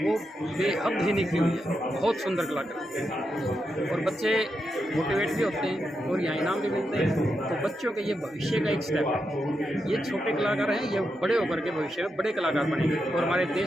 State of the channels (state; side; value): normal; both; correlation 0.85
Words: बेहद ही निखरी हुई है, बहुत सुंदर कला करते हैं और बच्चे मोटिवेट भी होते हैं और यहाँ इनाम भी मिलते हैं। तो बच्चों के ये भविष्य का एक स्टेप है। ये छोटे कलाकार हैं, ये बड़े होकर के भविष्य में बड़े कलाकार बनेंगे और हमारे